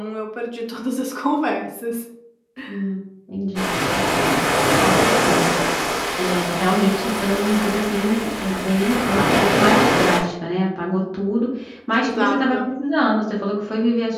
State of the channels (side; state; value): both; identical; correlation 1.00